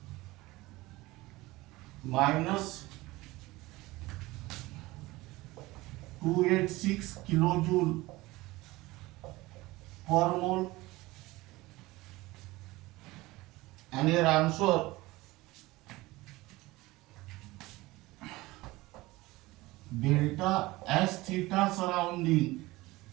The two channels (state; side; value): quieter; left; 20.0 dB